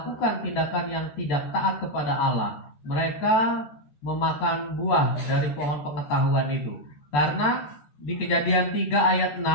tindakan yang tidak taat kepada Allah, mereka memakan buah dari pohon pengetahuan itu. Karena di Kejadian 3 ayat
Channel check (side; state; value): right; late; 14 ms